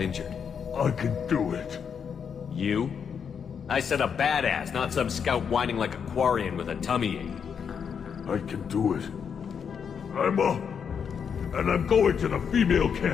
I can do it. You? I said a badass, not some scout whining like a Quarian with a tummy ache. I can do it. I'm up. And I'm going to the female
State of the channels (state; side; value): quieter; right; 7.0 dB